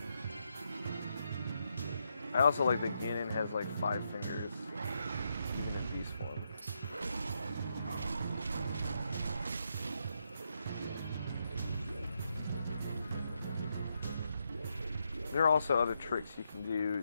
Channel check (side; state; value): both; inverted; correlation -0.81